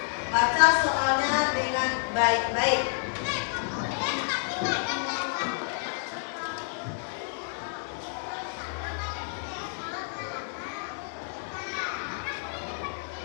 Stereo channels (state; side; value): silent; right; 58 dB below the other